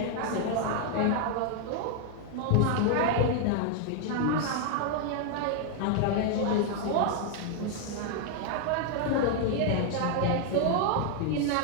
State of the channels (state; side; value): different; both; correlation 0.00